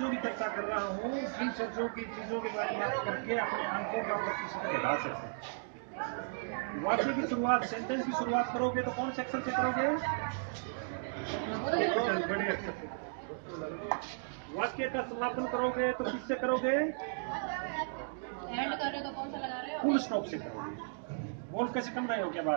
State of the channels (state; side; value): silent; left; digital silence